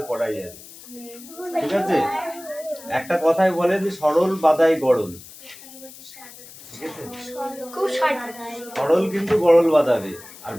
করাই যাবে, ঠিক আছে? একটা কথাই বলে যে সরল বাদাই গড়ল, ঠিক আছে? সরল কিন্তু গড়ল বাঁধাবে। আর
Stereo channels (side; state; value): left; noise; hiss, 18 dB below the sound